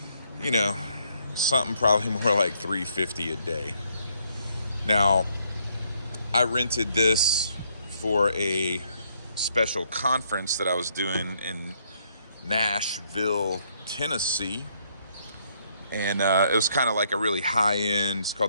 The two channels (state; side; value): inverted; both; correlation -0.71